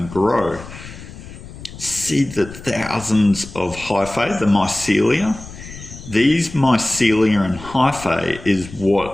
grow. See the thousands of hyphae, the mycelia? These mycelia and hyphae is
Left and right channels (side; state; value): left; noise; rumble, 15 dB below the sound